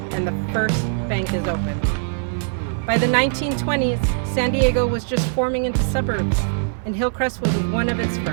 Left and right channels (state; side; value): silent; left; digital silence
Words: and the first bank is opened. By the 1920s, San Diego was just forming into suburbs, and Hillcrest was one of its